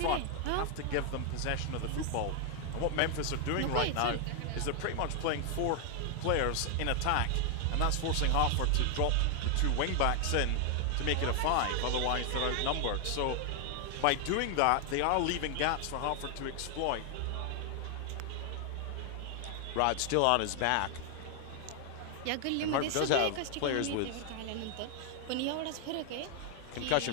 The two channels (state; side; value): different; both; correlation 0.00